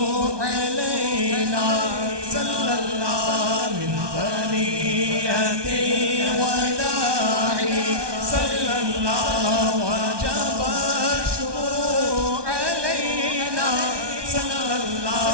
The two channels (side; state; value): left; late; 1.2 ms